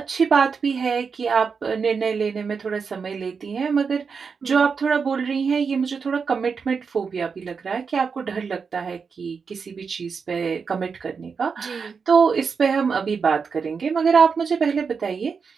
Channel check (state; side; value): quieter; left; 5.6 dB